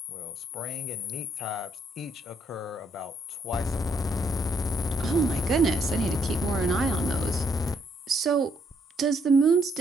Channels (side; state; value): both; normal; correlation 0.72